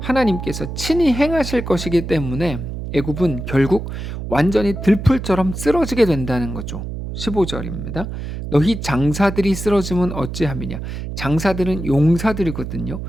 친히 행하실 것이기 때문에 애굽은 결국 완전히 들풀처럼 쓰러지게 된다는 거죠. 15절입니다. 너희 장사들이 쓰러지면 어찌함이냐. 장사들은 용사들이거든요.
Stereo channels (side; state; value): right; noise; hum, 7 dB below the sound